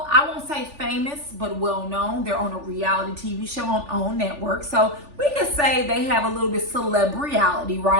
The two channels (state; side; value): late; left; 3.4 ms